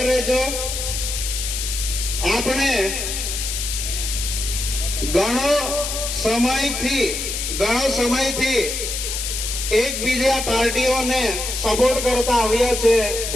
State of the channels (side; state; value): left; noise; hiss, 3 dB below the sound